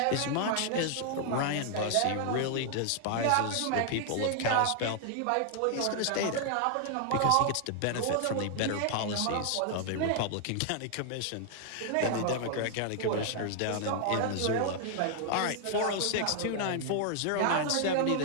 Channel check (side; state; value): both; different; correlation 0.00